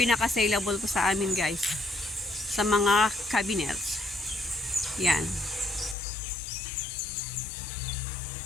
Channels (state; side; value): drops out; right; at 6.0 s